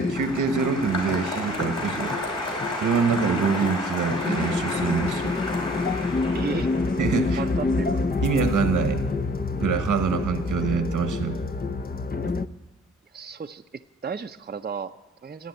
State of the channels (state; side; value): normal; both; correlation 0.53